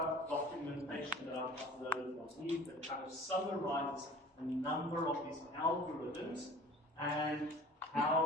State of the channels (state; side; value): normal; both; correlation 0.45